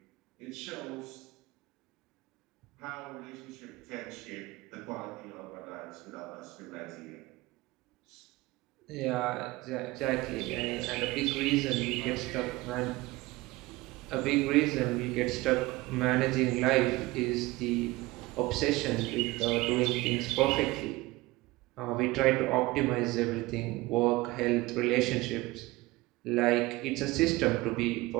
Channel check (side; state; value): left; quieter; 20.4 dB